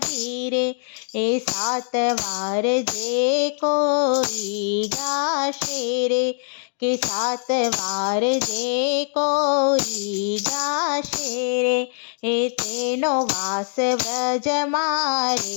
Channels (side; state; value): right; silent; 64 dB below the other